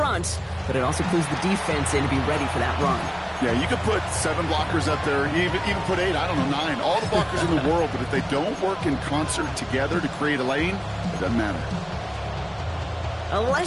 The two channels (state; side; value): identical; both; correlation 1.00